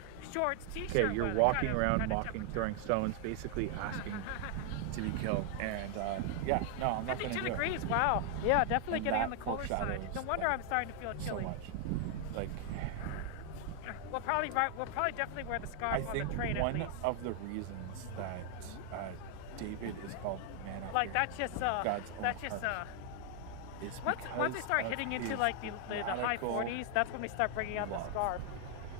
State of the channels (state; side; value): different; both; correlation 0.00